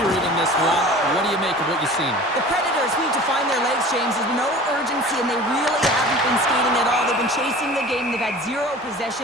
period in this one. What do you make of what you've seen? The Predators need to find their legs, James. There's no urgency, and they really haven't been skating at all. They've been chasing the game. They've had 0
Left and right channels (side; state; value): both; normal; correlation 0.41